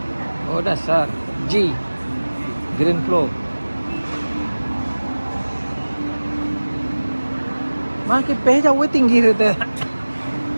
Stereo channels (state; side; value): inverted; both; correlation -1.00